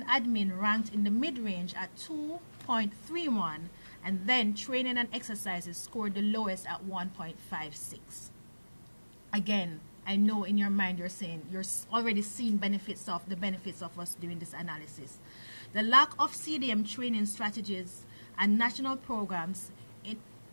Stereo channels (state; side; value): inverted; both; correlation -1.00